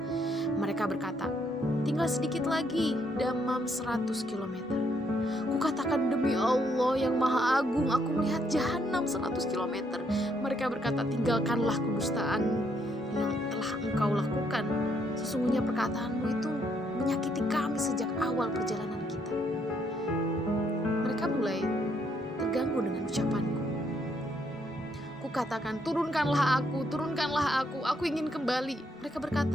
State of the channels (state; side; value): normal; both; correlation 0.72